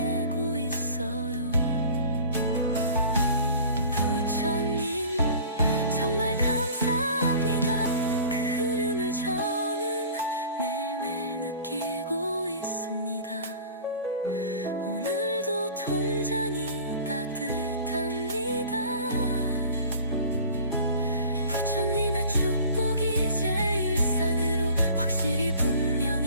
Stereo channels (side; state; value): both; inverted; correlation -0.44